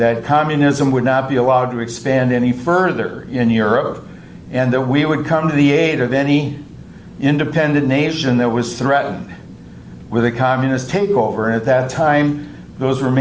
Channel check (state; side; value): identical; both; correlation 1.00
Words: communism would not be allowed to expand any further in Europe, and that we would come to the aid of any independent nation that was threatened with a communist takeover. And at that time, those were